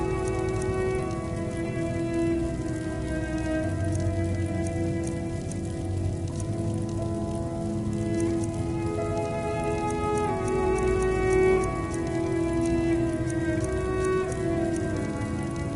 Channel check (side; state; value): both; identical; correlation 1.00